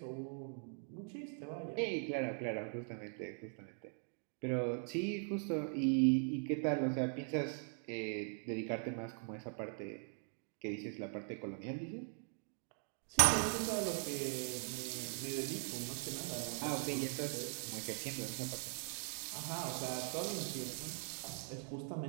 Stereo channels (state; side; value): silent; left; 50 dB below the other